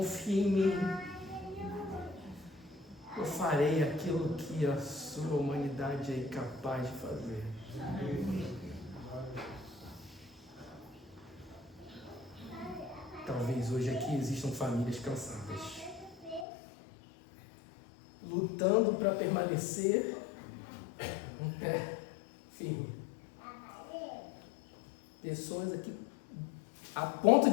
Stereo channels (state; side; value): drops out; right; at 16.4 s